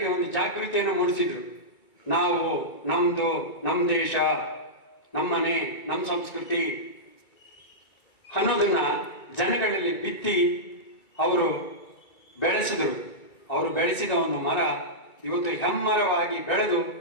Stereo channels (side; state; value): right; late; 2.3 ms